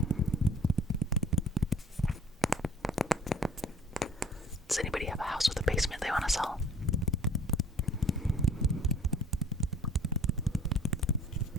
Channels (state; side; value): normal; both; correlation 0.51